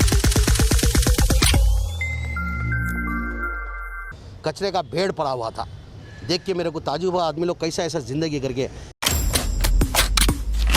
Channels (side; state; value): both; identical; correlation 1.00